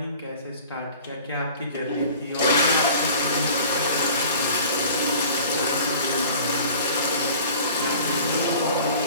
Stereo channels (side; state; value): both; inverted; correlation -0.45